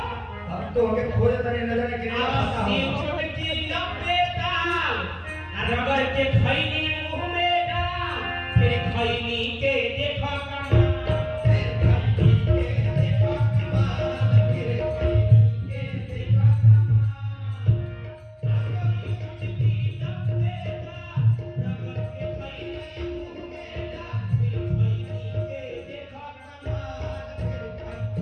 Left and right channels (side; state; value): both; identical; correlation 1.00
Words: हम तो हमें खोज तने नजर केने वाला छोटे की लंबे ताल रबर के खैनी मुंह में डाल फिर खैनी के देखा